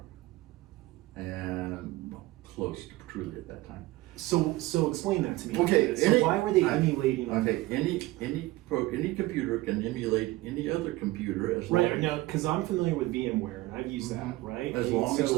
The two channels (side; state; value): left; quieter; 19.0 dB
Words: And well, close to truly at that time. so explain that to me. Okay, So why were they emulating? Okay, any computer can emulate any other computer as long Right, now, because I'm familiar with VMware and I've used that, right? as And long as